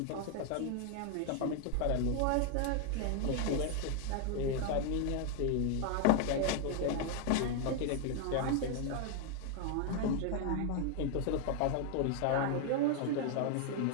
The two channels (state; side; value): different; both; correlation 0.00